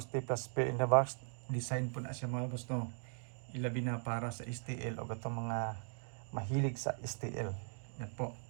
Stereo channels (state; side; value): silent; left; 52 dB below the other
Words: plus pair in the box design po na siya mga boss no ilabi na para sa STL o gatong mga mahilig sa STL. Yan po.